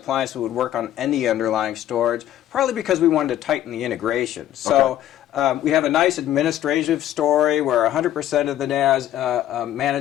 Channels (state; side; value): quieter; right; 12.3 dB